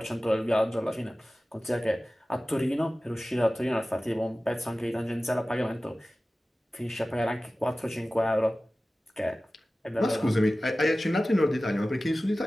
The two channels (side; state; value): both; normal; correlation 0.96